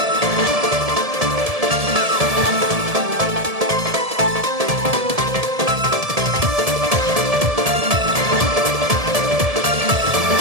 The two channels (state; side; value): late; left; 1.7 ms